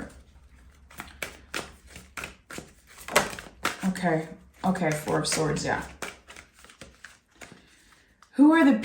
Okay, Four of Swords, yeah. Who are the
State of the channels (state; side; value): identical; both; correlation 1.00